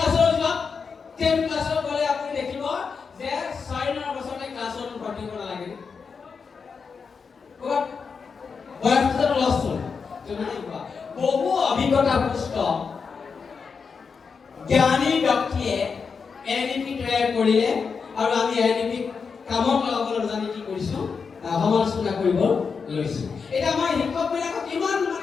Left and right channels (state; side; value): quieter; right; 5.5 dB